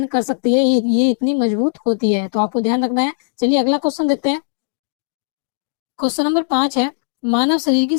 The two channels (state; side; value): silent; right; digital silence